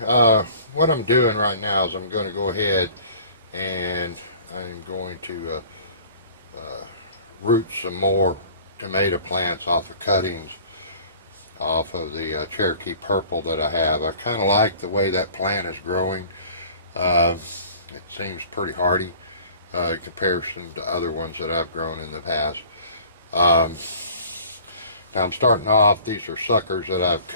what I'm doing right now is I'm going to go ahead and I'm going to root some more tomato plants off of cuttings off of the Cherokee Purple that I have. I kind of like the way that plant is growing. Uh, it seems pretty hardy in comparison to other ones that I've grown in the past. Um, Now I'm starting off, these are suckers that I've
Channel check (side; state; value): both; inverted; correlation -0.48